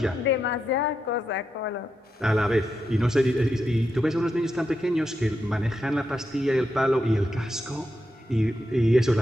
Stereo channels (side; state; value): both; normal; correlation 0.85